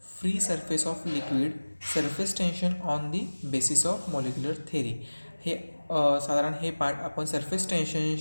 free surface of liquid, surface tension on the basis of molecular theory. हे साधारण हे पार्ट आपण सरफेस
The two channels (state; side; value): inverted; both; correlation -1.00